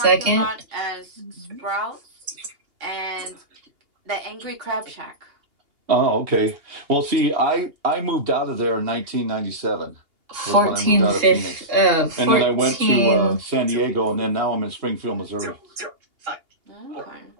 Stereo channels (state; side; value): late; left; 2.8 ms